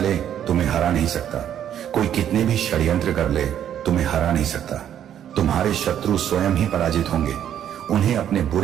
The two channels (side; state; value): left; quieter; 10.1 dB